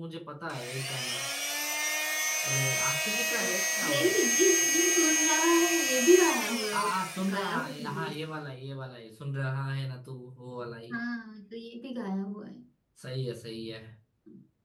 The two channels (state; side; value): identical; both; correlation 1.00